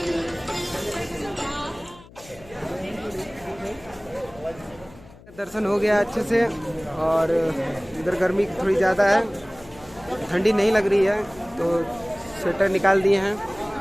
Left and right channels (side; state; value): left; noise; hum, 22 dB below the sound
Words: दर्शन हो गया अच्छे से और इधर गर्मी थोड़ी ज़्यादा है, ठंडी नहीं लग रही है तो स्वेटर निकाल दिए हैं।